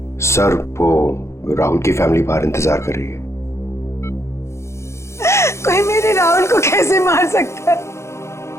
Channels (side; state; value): right; late; 0.13 ms